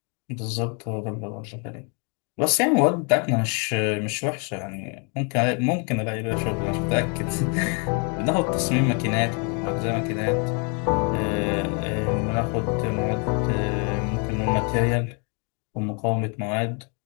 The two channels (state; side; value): quieter; right; 36.7 dB